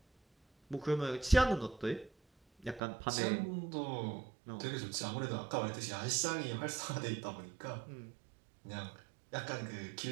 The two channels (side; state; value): left; drops out; at 2.8 s